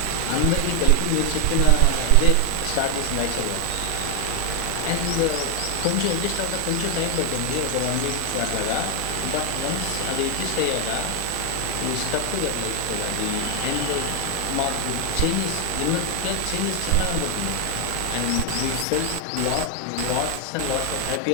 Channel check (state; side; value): different; both; correlation 0.00